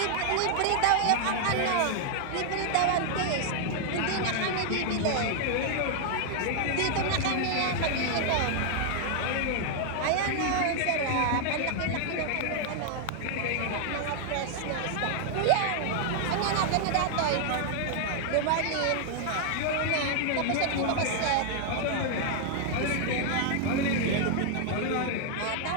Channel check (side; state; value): both; different; correlation 0.00